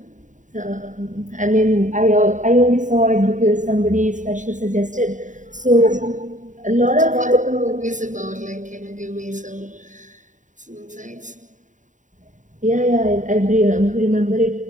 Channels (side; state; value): left; late; 0.36 ms